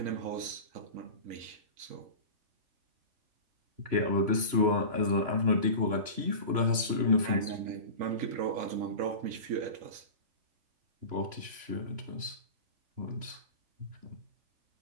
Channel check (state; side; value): late; left; 3.0 ms